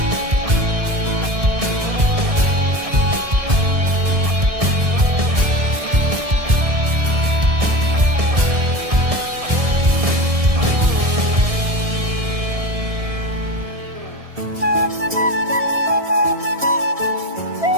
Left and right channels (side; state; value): left; late; 1.7 ms